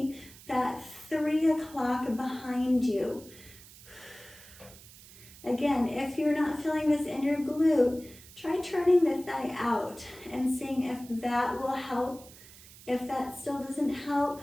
that 3 o'clock behind you. Again, if you're not feeling this in your glute, try turning the thigh out and seeing if that will help. If that still doesn't help,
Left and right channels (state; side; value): noise; right; hiss, 20 dB below the sound